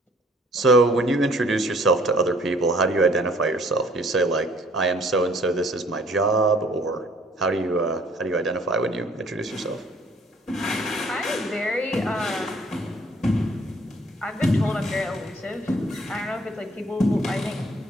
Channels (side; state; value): both; normal; correlation 0.59